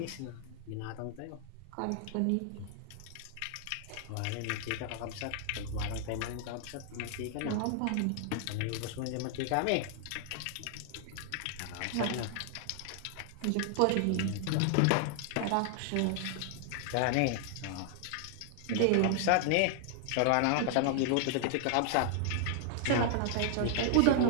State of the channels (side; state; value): both; different; correlation 0.00